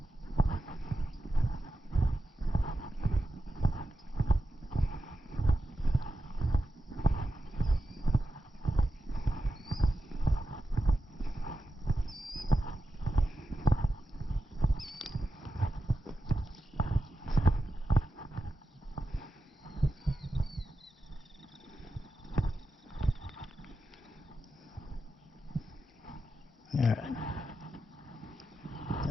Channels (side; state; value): both; normal; correlation 0.90